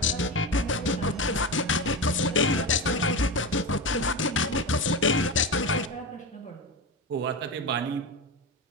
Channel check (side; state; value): both; normal; correlation 0.21